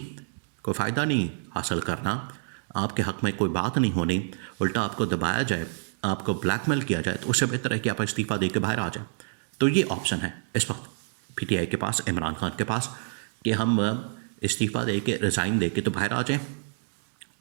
कोई फ़ायदा नहीं हासिल करना, आपके हक़ में कोई बात नहीं होनी, उल्टा आपको दबाया जाए, आपको ब्लैकमेल किया जाए, तो उससे बेहतर है कि आप इस्तीफ़ा दे के बाहर आ जाए। तो ये ऑप्शन है इस वक्त PTI के पास, इमरान खान के पास, कि हम इस्तीफ़ा दे के, रिज़ाइन दे के तो बाहर आ जाएँ,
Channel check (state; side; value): silent; left; 59 dB below the other